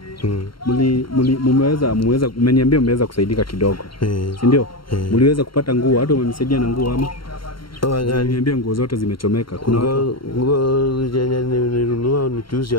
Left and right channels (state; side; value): late; right; 0.73 ms